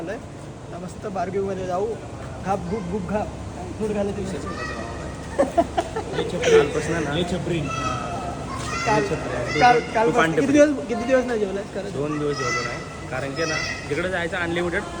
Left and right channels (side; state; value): both; identical; correlation 1.00